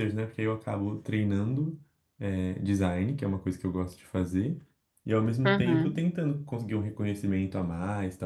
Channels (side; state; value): both; identical; correlation 1.00